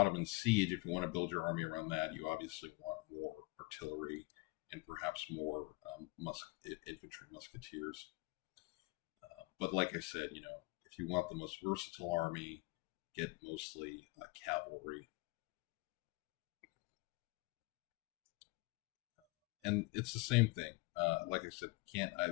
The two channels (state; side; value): quieter; right; 24.4 dB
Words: siege, if you want to build your army around that, you obviously want more artillery and perhaps more infantry musketeers. But like I said, if you want the most versatile army, get mostly cavalry. And it's the same thing. Like I said,